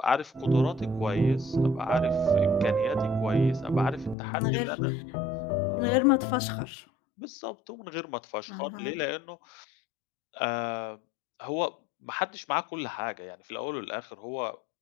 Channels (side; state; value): right; drops out; at 4.2 s